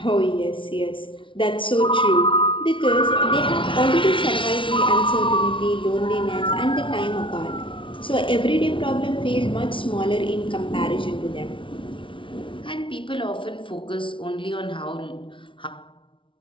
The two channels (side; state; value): right; late; 0.25 ms